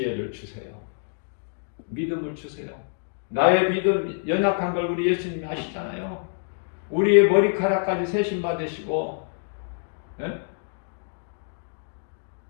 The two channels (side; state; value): right; silent; digital silence